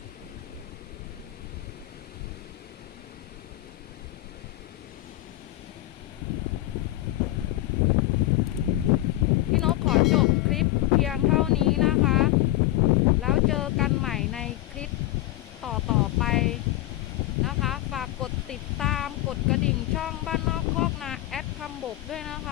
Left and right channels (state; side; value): quieter; right; 16.3 dB